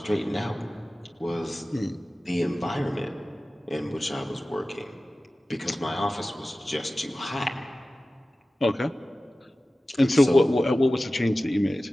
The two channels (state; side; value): normal; both; correlation 0.96